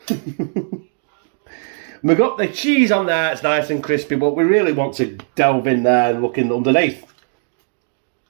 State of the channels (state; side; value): silent; left; digital silence